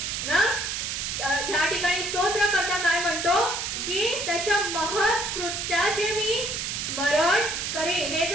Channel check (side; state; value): right; noise; hiss, 3 dB below the sound